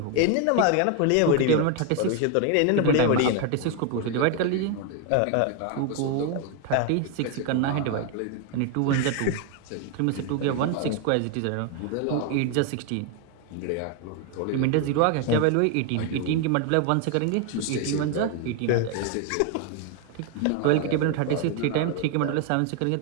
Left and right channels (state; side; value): different; both; correlation 0.01